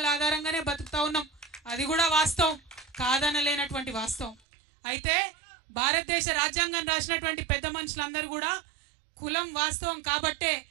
ఆధారంగానే బతుకుతా ఉన్నాం, అది కూడా వాస్తవం, కాదనలేనటువంటి వాస్తవం. అయితే భారతదేశ రాజ్యాంగం రాసినటువంటి పెద్ద మనుషులందరూ కూడా కులం వాస్తవం కాబట్టే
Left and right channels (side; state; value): left; drops out; at 4.4 s